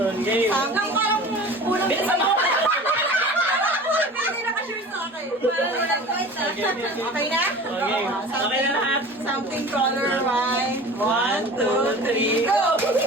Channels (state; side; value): normal; both; correlation 0.39